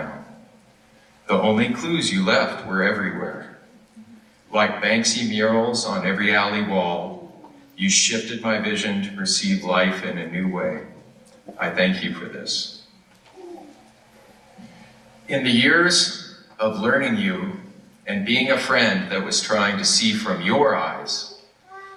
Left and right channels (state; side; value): identical; both; correlation 1.00